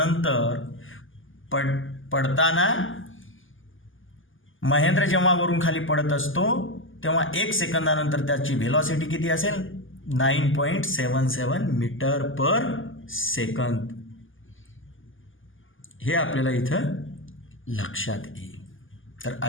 पडताना महेंद्र जेव्हा वरून खाली पडत असतो तेव्हा 1 सेकंदानंतर त्याची व्हेलॉसिटी किती असेल? 9.77 मीटर पर सेकंद. हे आपल्याला इथं लक्षात येईल. तर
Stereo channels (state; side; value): late; right; 0.58 ms